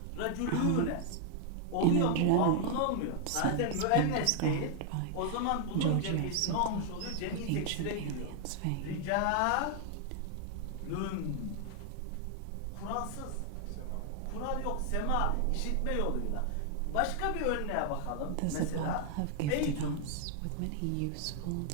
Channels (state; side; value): different; both; correlation 0.00